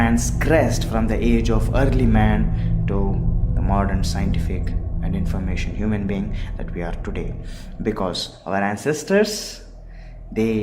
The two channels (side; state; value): both; identical; correlation 1.00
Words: from the age of early man to the modern scientific and information human being that we are today, because our ancestors,